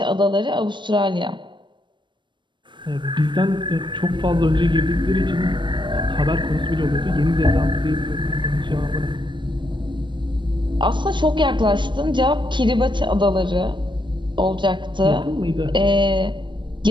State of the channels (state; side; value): late; left; 0.23 ms